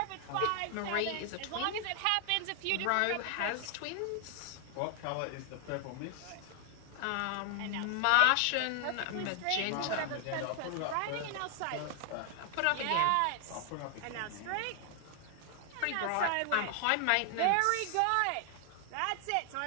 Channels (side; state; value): both; different; correlation 0.00